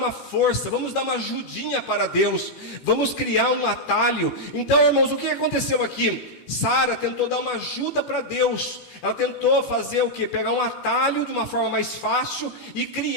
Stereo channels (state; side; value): late; right; 15 ms